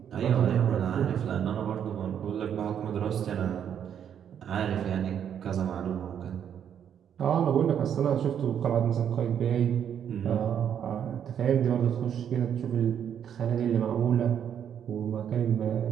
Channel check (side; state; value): left; quieter; 8.8 dB